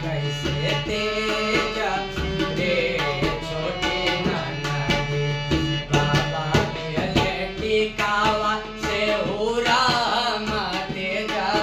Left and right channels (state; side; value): identical; both; correlation 1.00